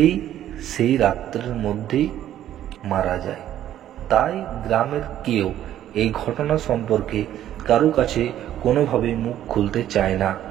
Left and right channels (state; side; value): quieter; left; 11.8 dB